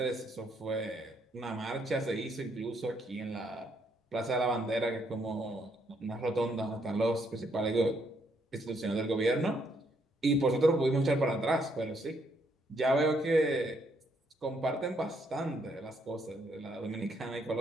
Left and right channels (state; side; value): normal; both; correlation 0.73